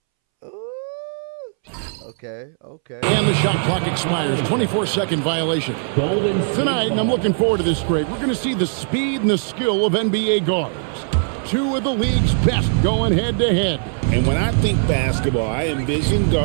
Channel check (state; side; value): silent; left; 66 dB below the other